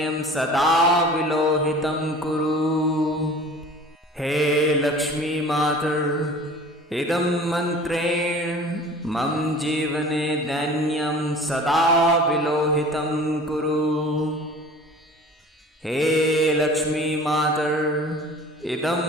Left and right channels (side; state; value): both; normal; correlation 0.43